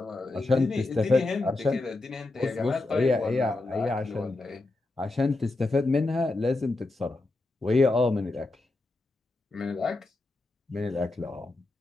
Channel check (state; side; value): quieter; right; 3.0 dB